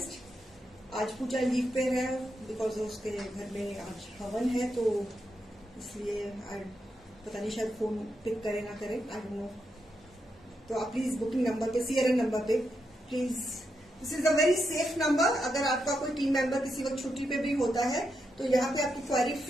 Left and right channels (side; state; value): both; normal; correlation 0.83